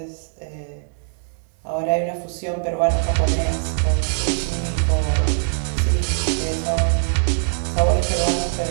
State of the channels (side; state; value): left; silent; 64 dB below the other